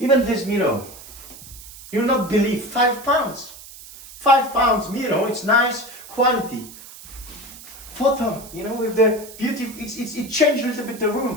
this mirror, you'll not believe, £5. £5 mirror, it's nice quality. Photo, you know, with the beauty, it changed a little bit the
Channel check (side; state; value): right; noise; hiss, 17 dB below the sound